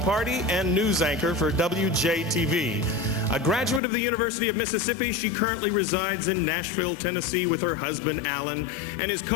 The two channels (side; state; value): right; drops out; at 3.8 s